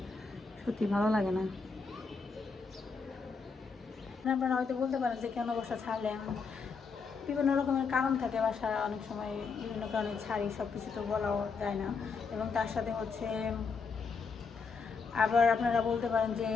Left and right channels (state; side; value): quieter; right; 5.0 dB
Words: সত্যি ভালো লাগে না। আপনারা হয়তো বলতে পারেন যে কেন বাসা ছাড়লেন, বিভিন্ন রকমের কারণ থাকে, বাসা অনেক সময় বিভিন্ন কারণে ছাড়ি, সব কিছু তো বলাও যায় না। এবং তার সাথে হচ্ছে আবার আপনারা বলতে পারেন যে